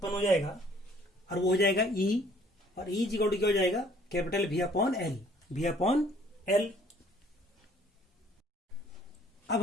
हो जाएगा और वो हो जाएगा E। और E इक्वल टू क्या हो जाएगा, capital V upon L, V upon L। अब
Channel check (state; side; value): normal; both; correlation 0.59